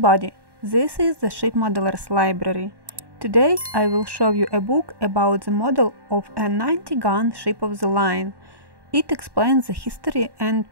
this is the Ship Modelers Library. Today I will show you a book about the model of a 90-gun ship of the line. It explains the history and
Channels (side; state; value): left; late; 1.1 ms